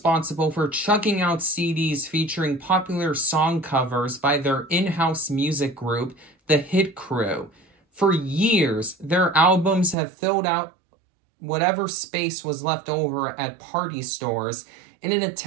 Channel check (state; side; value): drops out; left; at 10.0 s